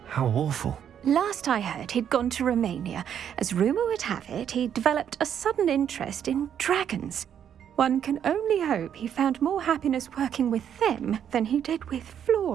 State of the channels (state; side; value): quieter; left; 9.0 dB